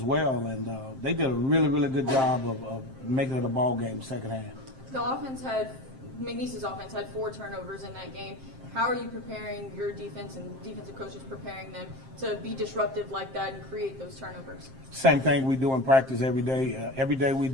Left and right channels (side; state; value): left; late; 7.6 ms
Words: well. And they did a really, really good job of making it a ball game second half. McNeese's offense had 4 turnovers in that game. How are you preparing your defense and defensive coaches preparing them to be disruptive like that and create those turnovers? Same thing we do in practice every day. Every day we